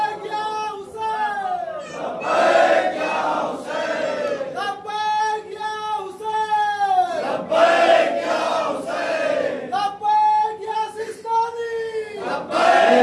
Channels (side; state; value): both; identical; correlation 1.00